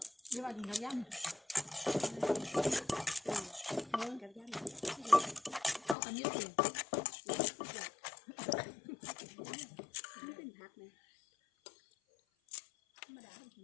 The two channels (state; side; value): drops out; right; at 6.0 s